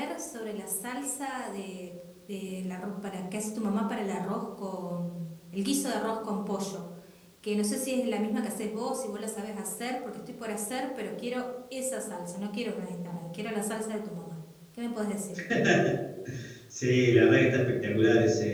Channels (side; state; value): both; identical; correlation 1.00